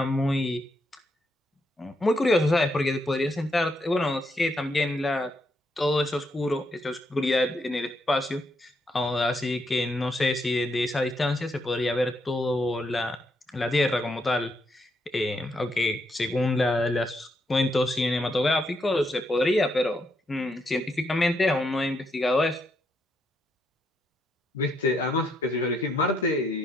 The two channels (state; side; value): normal; both; correlation 0.78